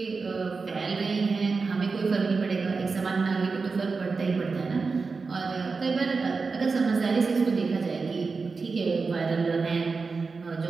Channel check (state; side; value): quieter; left; 4.5 dB